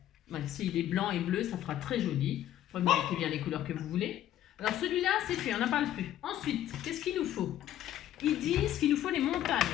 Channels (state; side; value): quieter; right; 12.2 dB